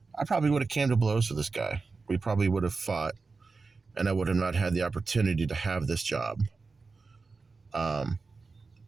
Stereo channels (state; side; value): quieter; left; 4.2 dB